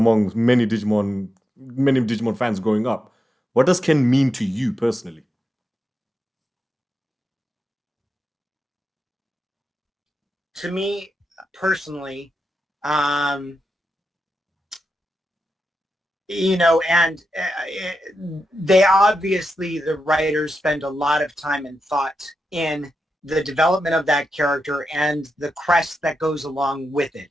many Digimon fans growing up. What does Ken mean to you personally? To me personally, and they obviously, the writers spend a lot of time and thought in the development of that character and the crest that goes along with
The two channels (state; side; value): normal; both; correlation 0.88